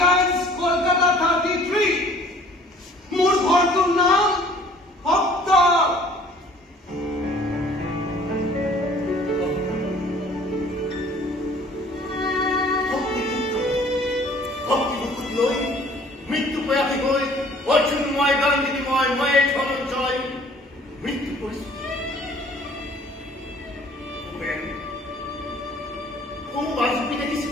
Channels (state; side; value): normal; both; correlation 0.54